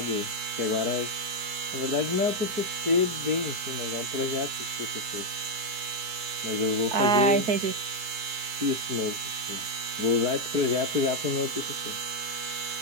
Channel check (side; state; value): left; late; 4.6 ms